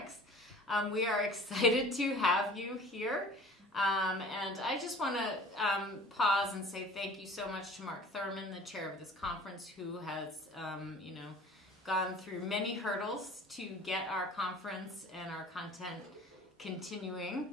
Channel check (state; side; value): normal; both; correlation 0.46